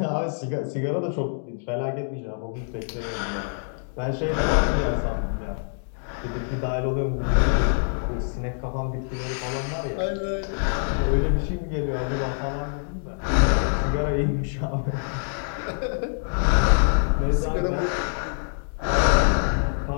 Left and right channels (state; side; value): silent; right; digital silence